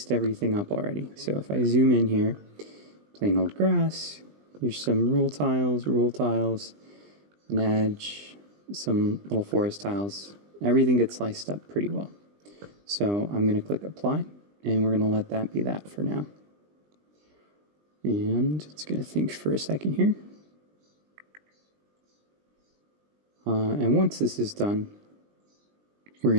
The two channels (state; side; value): late; left; 20 ms